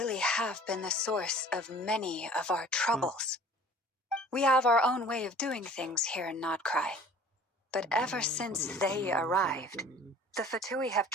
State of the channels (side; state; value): both; normal; correlation 0.48